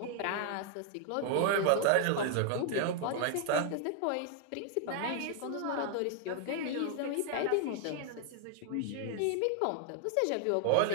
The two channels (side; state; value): both; different; correlation 0.00